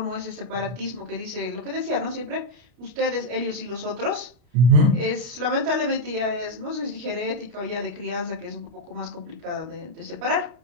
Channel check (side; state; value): left; late; 32 ms